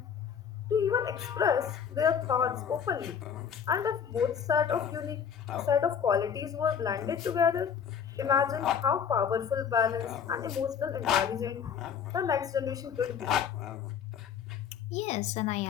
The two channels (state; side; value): quieter; right; 7.6 dB